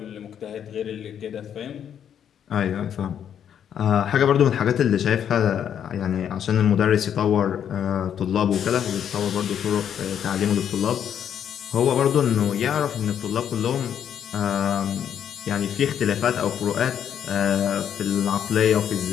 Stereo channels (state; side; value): quieter; right; 9.0 dB